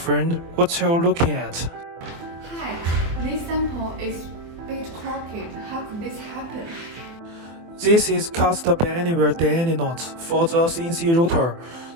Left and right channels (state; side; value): late; left; 24 ms